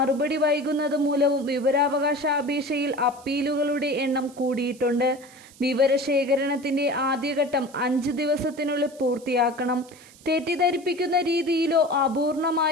വൈകുന്നത് മൂലവും വിവരാവകാശ അപേക്ഷയിൽ അപ്പീലുകളുടെ എണ്ണം കൂടിയിട്ടുണ്ട്. വിവരശേഖരണത്തിന്റെ ആദ്യഘട്ടം 5 ദിവസത്തിനുള്ളിൽ പൂർത്തിയാക്കണം. തെറ്റിദ്ധരിപ്പിക്കുന്ന രീതിയിലോ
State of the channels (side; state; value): right; noise; hiss, 24 dB below the sound